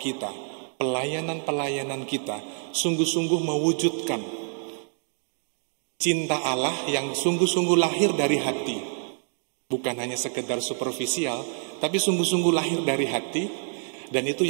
kita, pelayanan-pelayanan kita, sungguh-sungguh mewujudkan cinta Allah yang sungguh-sungguh lahir dari hati. Bukan hanya sekedar superficial, tapi sungguh-sungguh lahir dari hati. Dan itu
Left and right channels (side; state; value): left; silent; 60 dB below the other